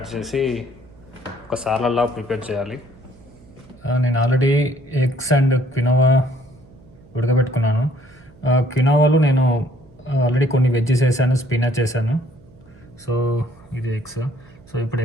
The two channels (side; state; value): right; noise; hum, 25 dB below the sound